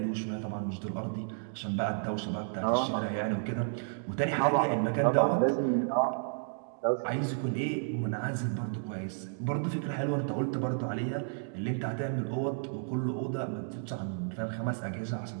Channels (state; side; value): silent; left; digital silence